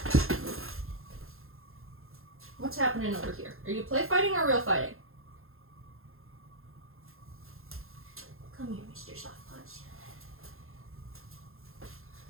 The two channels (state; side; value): late; left; 0.61 ms